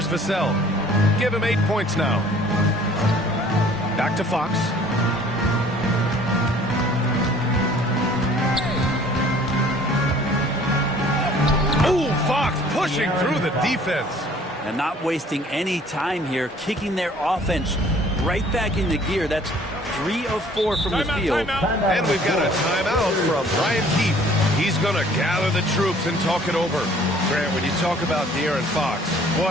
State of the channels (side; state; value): both; normal; correlation 0.54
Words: Vassell. Give him 8 points now. Back to Fox. Oh, Fox pushing through the defense. And not wasting any time here, kicking their offense right back into gear. That's 3 of 4 from the field. And we've got a timeout from Brian Keefe. He's going to gather the troops and talk it over. Grant, when you talk about De'Aaron Fox,